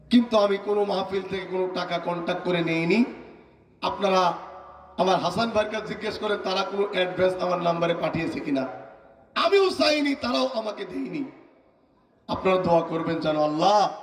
কিন্তু আমি কোনো মাহফিল থেকে কোনো টাকা কন্ট্যাক্ট করে নেইনি। আপনারা আমার হাসান ভাইয়ের কাছে জিজ্ঞেস করেন তারা কোনো অ্যাডভান্স আমার নাম্বারে পাঠিয়েছে কিনা। আমিও চাইনি, তারাও আমাকে দেয়নি। আপনারা দোয়া করবেন যেন আল্লাহ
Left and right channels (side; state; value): both; identical; correlation 1.00